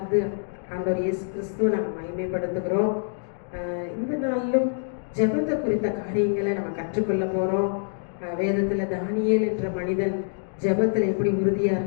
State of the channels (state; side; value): silent; right; digital silence